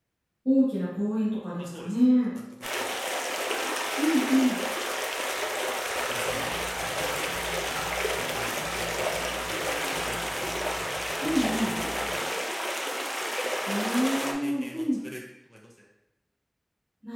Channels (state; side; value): identical; both; correlation 1.00